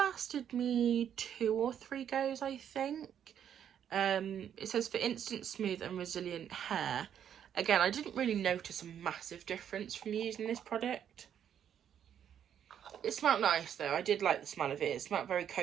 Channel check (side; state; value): left; quieter; 9.2 dB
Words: me 2 or 3 goes, I think. It says for instant smooth and resilient hair. Again, I didn't really notice a massive difference from using this product. It smelled nice though. I did like the smell of it. It smelled very